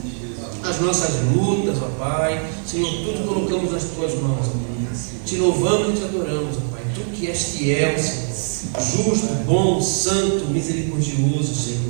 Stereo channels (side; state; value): left; silent; digital silence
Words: lutas, ó Pai, Senhor, tudo colocamos nas Tuas mãos, ó. Te louvamos e Te adoramos, ó Pai, Tu que és fiel, Senhor, justo, bom, santo, misericordioso,